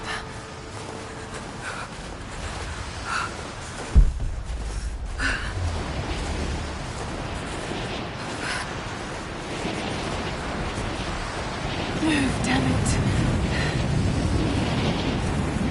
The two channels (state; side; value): identical; both; correlation 1.00